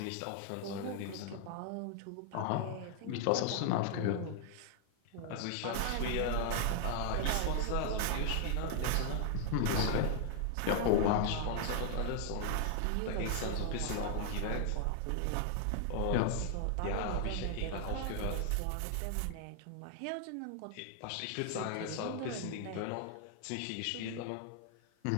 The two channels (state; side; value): different; both; correlation 0.00